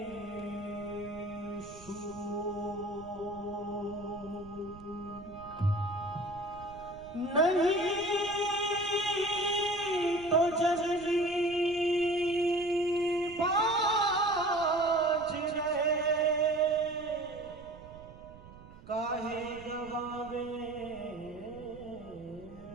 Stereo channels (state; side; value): noise; right; rumble, 18 dB below the sound